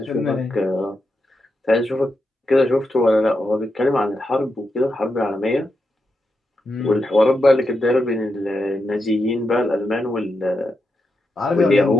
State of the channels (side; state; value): both; normal; correlation 0.85